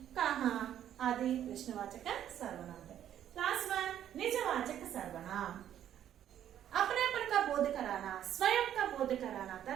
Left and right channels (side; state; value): left; quieter; 10.7 dB